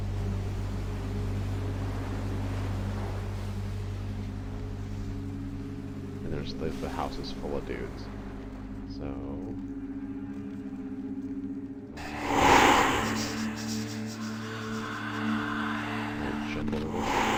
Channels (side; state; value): both; identical; correlation 1.00